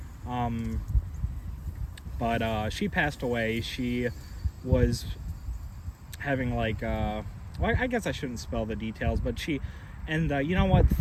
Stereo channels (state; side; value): identical; both; correlation 1.00